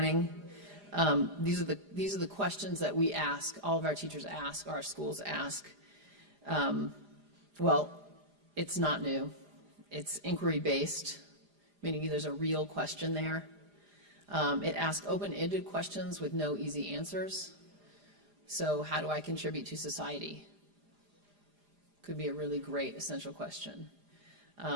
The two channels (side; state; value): left; late; 4.9 ms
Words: These are the questions that we ask, all of our teachers ask, our schools ask. Well, it's not new. It's inquiry-based, meaning there's a real question there. It asks open-ended questions with no easy answers. So how do I contribute to society? Could be a really great essential question.